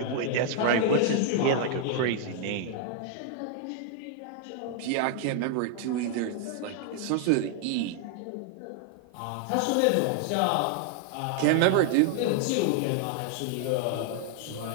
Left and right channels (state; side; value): different; both; correlation 0.00